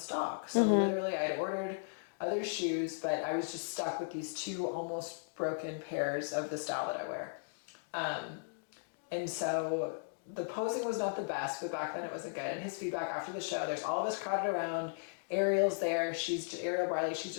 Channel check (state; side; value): silent; right; digital silence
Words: So literally I had ordered other shoes, but I was just stuck with these 2 almost broken pairs of the style that I wear. And so the posing was not the best, but back then it wasn't good. And his feedback after the show, there's all of us crowded around. Ariel's there. Ariel Barley. She's